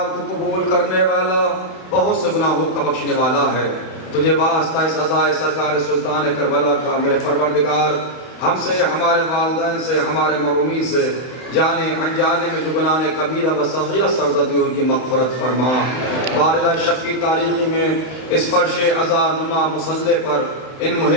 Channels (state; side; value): late; right; 31 ms